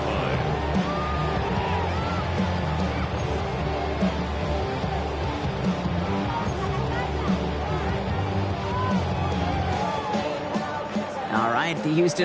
line. All right, the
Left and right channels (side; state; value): both; identical; correlation 1.00